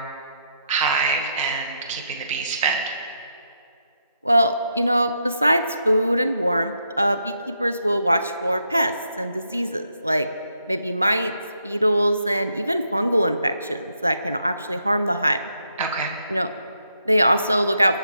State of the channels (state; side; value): inverted; both; correlation -0.79